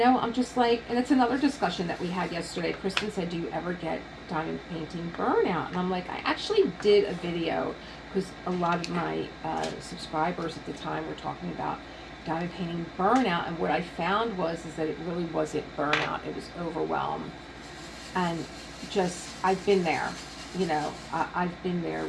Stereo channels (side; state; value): both; identical; correlation 1.00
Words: I'm just like, and it's another discussion that we had yesterday. Kristen said, do you ever get diamond painting burnout? And I'm like, I actually did a video because a lot of my subscribers at the time were talking about diamond painting burnout. And what I found is that it really wasn't burnout. It was overwhelm. And just, I've been there, you know, I've been there